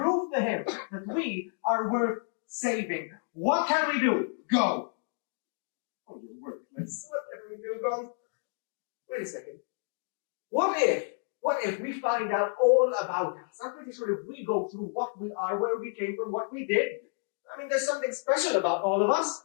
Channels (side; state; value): right; silent; 58 dB below the other